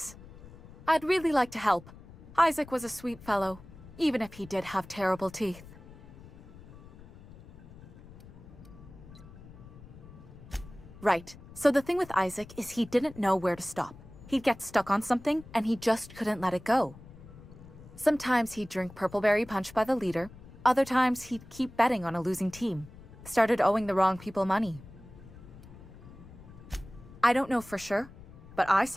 I'd really like to help. Isaac was a sweet fellow, even if he did have terrible teeth. Right. So the thing with Isaac is he didn't know where to stop. He'd get stuck on something, and he just couldn't let it go. Sometimes he'd drink purpleberry punch by the liter. Other times he'd keep betting on a losing team. Started owing the wrong people money. I don't know for sure, but I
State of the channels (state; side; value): noise; left; rumble, 18 dB below the sound